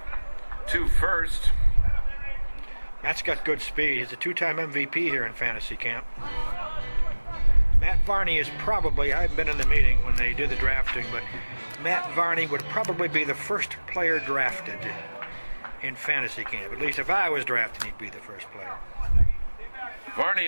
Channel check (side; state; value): both; inverted; correlation -1.00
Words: to first. Matt's got good speed. He's a 2-time MVP here in fantasy camp. Matt Varney is probably, I haven't been in the meeting when they did the drafting, but Matt Varney would probably be the first player drafted in fantasy camp. At least if I was drafted, he'd be the first player. Varney